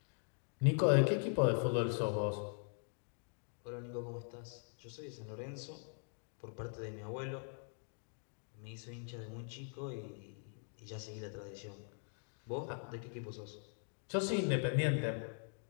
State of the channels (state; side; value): silent; right; 50 dB below the other